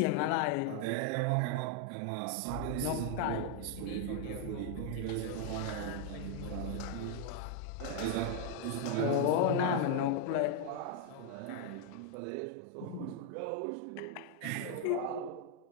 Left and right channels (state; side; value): different; both; correlation 0.00